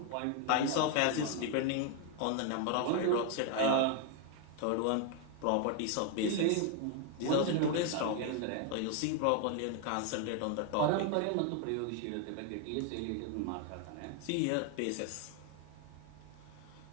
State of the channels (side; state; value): both; different; correlation 0.00